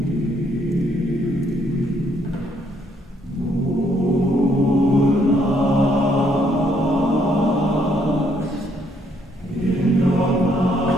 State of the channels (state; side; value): normal; both; correlation 0.70